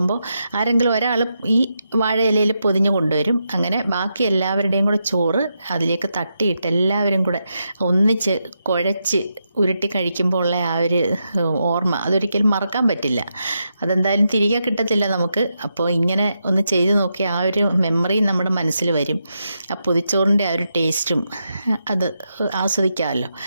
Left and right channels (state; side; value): inverted; both; correlation -0.84